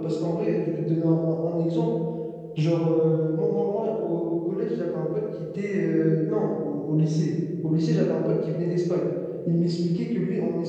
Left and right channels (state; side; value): identical; both; correlation 1.00